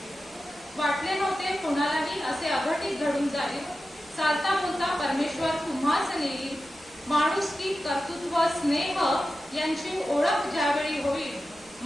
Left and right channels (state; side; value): noise; right; hum, 29 dB below the sound